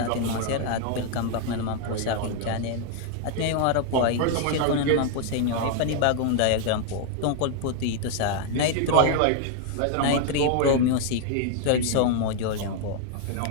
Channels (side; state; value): both; different; correlation 0.00